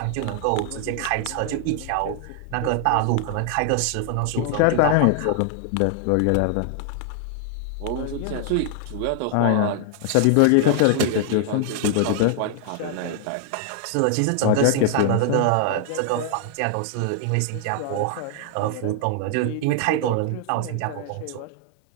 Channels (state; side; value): different; both; correlation 0.00